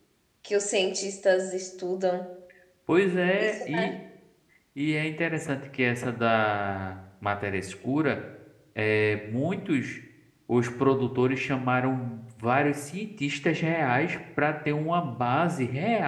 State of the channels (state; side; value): identical; both; correlation 1.00